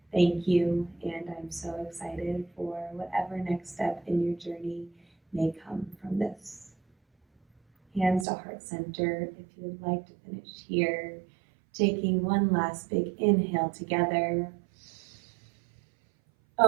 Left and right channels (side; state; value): left; drops out; at 8.2 s